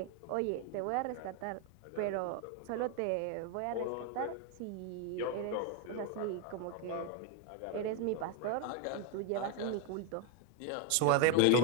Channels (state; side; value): different; both; correlation 0.01